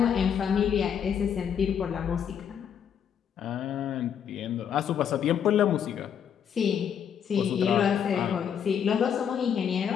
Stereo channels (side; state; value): right; quieter; 8.2 dB